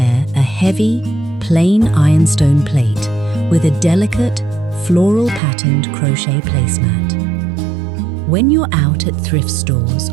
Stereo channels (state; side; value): drops out; left; at 5.4 s